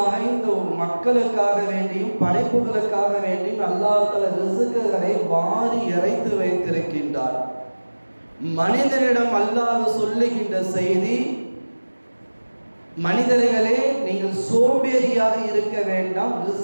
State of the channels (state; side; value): inverted; both; correlation -1.00